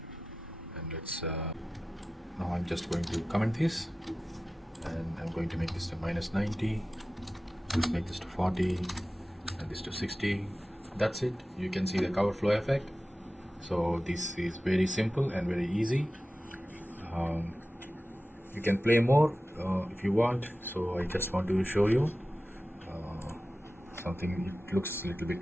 And let's now I'm just going to comment this, and I'm going to make this to -90. Let's make this to 40 and this to 60. That's it. You can see the cover flow effect. So this is very simple and very easy. You can play more if you want. So I just want to show you something. It looks a little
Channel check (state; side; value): normal; both; correlation 0.95